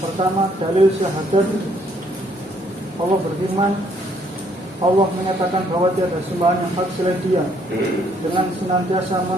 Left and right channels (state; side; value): normal; both; correlation 0.67